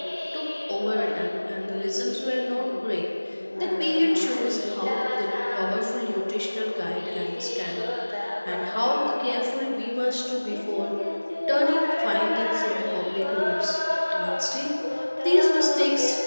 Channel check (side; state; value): both; inverted; correlation -1.00